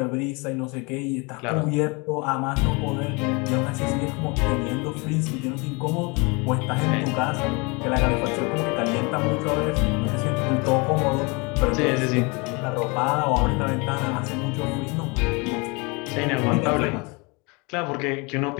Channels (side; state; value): right; quieter; 28.8 dB